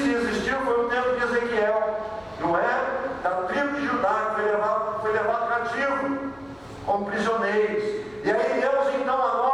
que existiu foi o tempo de Ezequiel, não é? Da tribo de Judá, que foi levado cativo, como prisioneiros. E aí Deus então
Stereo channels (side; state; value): left; noise; hum, 29 dB below the sound